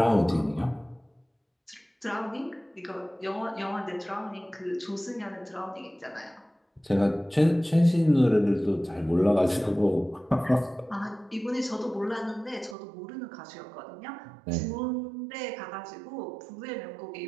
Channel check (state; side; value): drops out; left; at 12.8 s